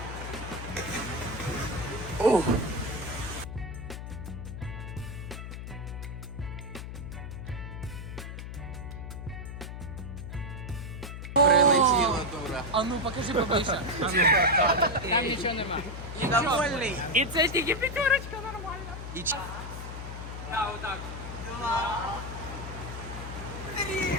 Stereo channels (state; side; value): noise; left; hum, 8 dB below the sound